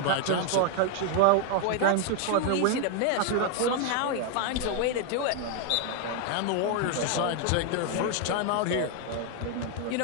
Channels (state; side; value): different; both; correlation 0.00